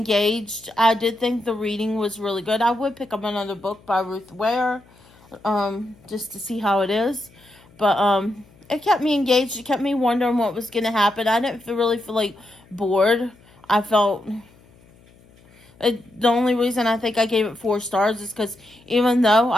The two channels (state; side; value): noise; left; hum, 28 dB below the sound